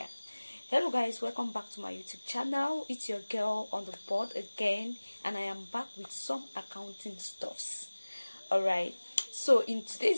Hello guys, welcome back to my YouTube channel. It's your girl on the board again, and I am back with some accounting stuffs. Alright, so in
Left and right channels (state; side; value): inverted; both; correlation -1.00